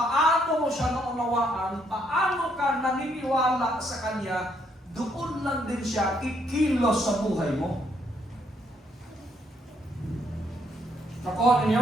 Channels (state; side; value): normal; both; correlation 0.72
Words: mo siya naunawaan, paano ka naniniwala sa Kanya, doon lang din siya kikilos sa buhay mo. Nakuha